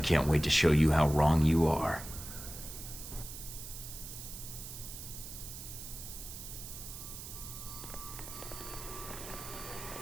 wait to show you how wrong you are.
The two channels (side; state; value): right; noise; hiss, 10 dB below the sound